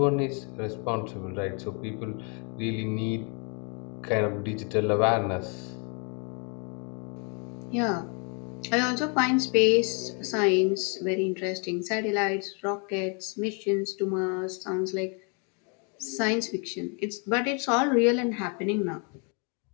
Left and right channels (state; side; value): quieter; right; 36.2 dB